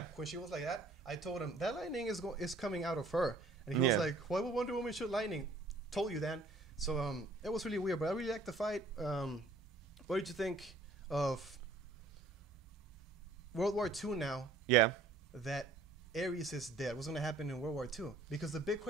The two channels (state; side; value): quieter; left; 3.3 dB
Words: When she was like that, I told him that lightning is coming out of her, and he was like, "Why would Wonder Woman shoot lightning?" Told you, Dan. So it was really weird, but I really liked the fight. What did you think of World War II now? Yeah. That Ares is dead. What's going to happen in World War II? Because the big